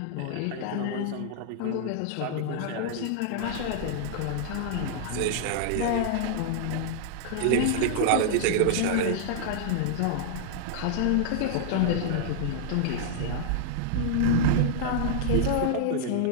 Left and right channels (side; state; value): both; different; correlation -0.01